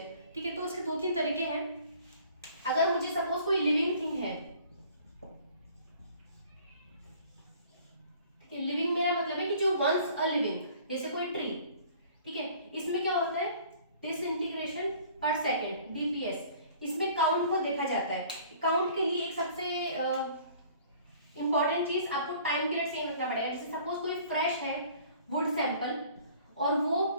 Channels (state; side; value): inverted; both; correlation -0.52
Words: ठीक है, तो उसके 2-3 तरीके हैं। अगर मुझे सपोज कोई लिविंग थिंग है, ठीक है, लिविंग मेरा मतलब है कि जो वंस अ लिविंग, जैसे कोई ट्री, ठीक है, इसमें क्या होता है, डिसइंटीग्रेशन पर सेकेंड, डीपीएस, इसमें काउंट को देखा जाता है। काउंट के लिए एक सबसे इंपॉर्टेंट चीज, आपको टाइम पीरियड सेम रखना पड़ेगा। जैसे सपोज कोई फ्रेश है वुड सैंपल, और